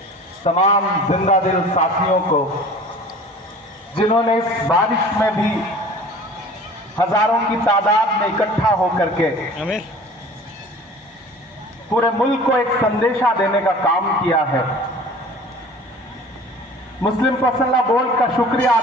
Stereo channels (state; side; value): normal; both; correlation 0.44